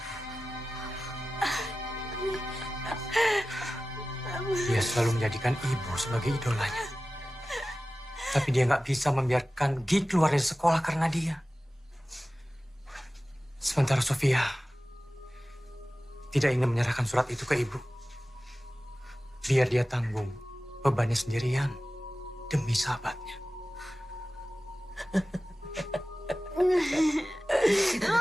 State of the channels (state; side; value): normal; both; correlation 0.96